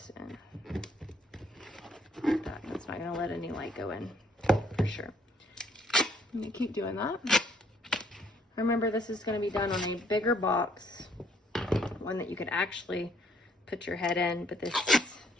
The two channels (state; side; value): normal; both; correlation 0.66